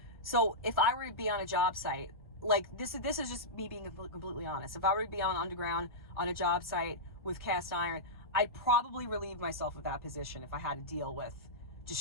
so if I were to be on a job site, like this is just me being completely honest. If I were to be on underground on a job site with cast iron, I'd probably relieve myself of that position if I had to deal with just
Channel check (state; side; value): normal; both; correlation -0.12